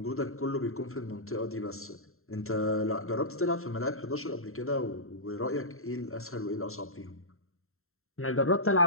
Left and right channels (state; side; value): late; right; 0.62 ms